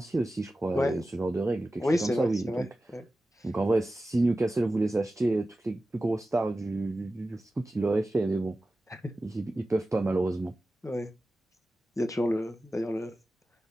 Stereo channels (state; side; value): normal; both; correlation 0.94